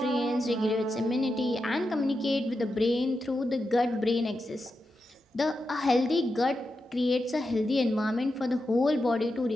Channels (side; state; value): both; normal; correlation 0.88